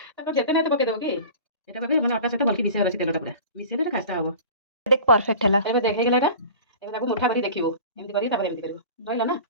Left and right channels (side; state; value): both; inverted; correlation -0.39